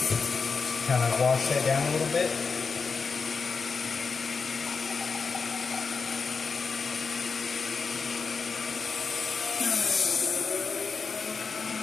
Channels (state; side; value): quieter; right; 5.0 dB